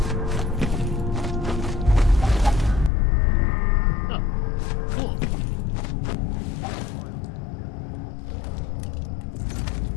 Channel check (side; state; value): right; drops out; at 2.9 s